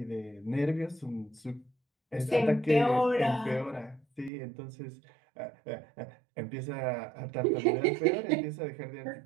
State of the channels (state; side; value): drops out; left; at 4.3 s